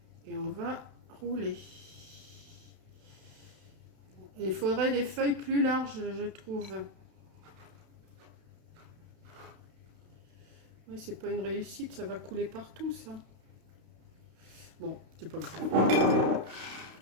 Et on va rouler. Il faudrait des feuilles plus larges, je trouve. Oui, c'est pas une réussite, ça va couler partout, ça. Bon, c'est pas grave.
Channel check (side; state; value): left; late; 32 ms